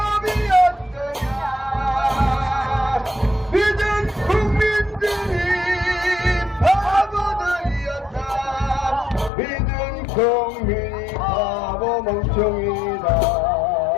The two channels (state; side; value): drops out; right; at 9.3 s